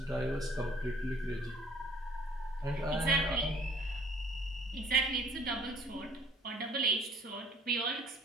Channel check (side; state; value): both; normal; correlation 0.55